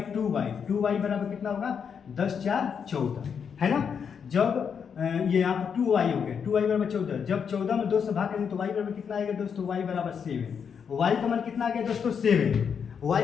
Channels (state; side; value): quieter; right; 6.9 dB